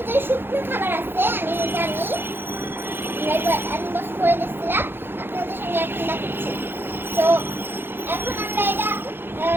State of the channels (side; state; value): left; late; 0.10 ms